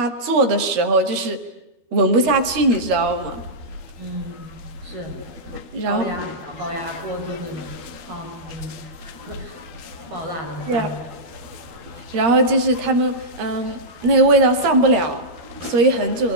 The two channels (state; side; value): late; left; 13 ms